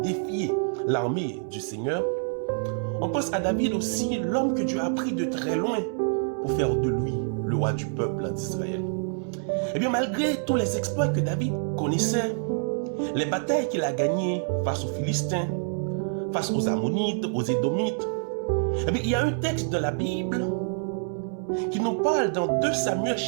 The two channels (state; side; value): silent; left; 60 dB below the other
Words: l'armée du Seigneur. On pense à David aussi, l'homme que Dieu a pris de très loin pour faire de lui le roi du peuple d'Israël. Eh bien, malgré tous les exploits que David connaissait, les batailles qu'il a gagnées face aux Philistins, face aux Ammonites, aux Édomites, eh bien, il y a un texte de la Bible qui nous parle dans 2 Samuel